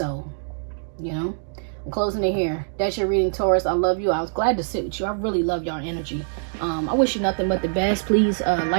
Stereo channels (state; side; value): silent; left; digital silence